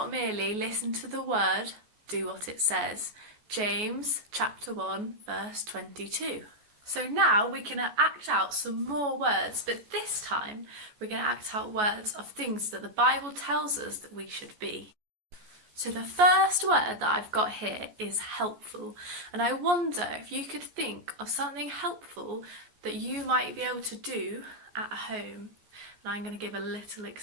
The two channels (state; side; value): late; left; 14 ms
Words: merely listen to the word, do what it says. James chapter 1 verse 22. So now we can act out some more words, but this time we're going to act out words of things that the Bible tells us that we should be. So the first word that I've got here is helpful, and I wonder if you could think of something helpful that you might be able to do at home. And I'm going to give a little